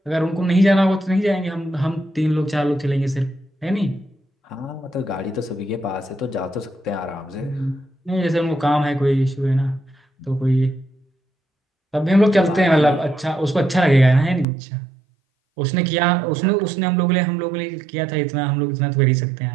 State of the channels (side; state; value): left; drops out; at 14.5 s